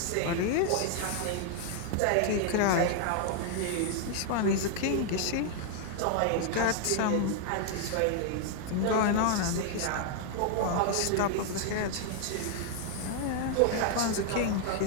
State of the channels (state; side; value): different; both; correlation 0.00